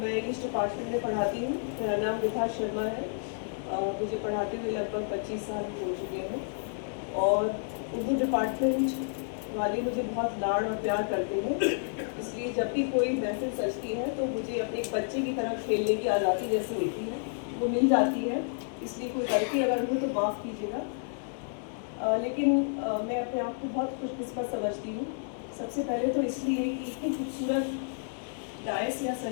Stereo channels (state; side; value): silent; right; 58 dB below the other